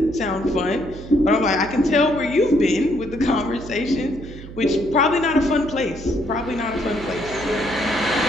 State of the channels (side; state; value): right; noise; hum, 14 dB below the sound